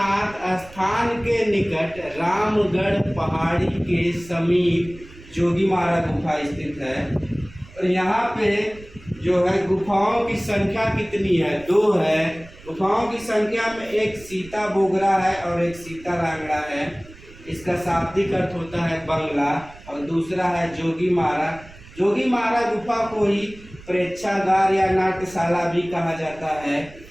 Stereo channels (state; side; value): noise; right; rumble, 20 dB below the sound